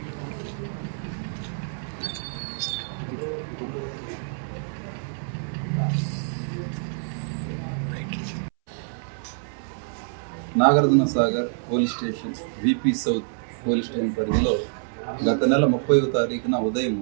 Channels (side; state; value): left; silent; 61 dB below the other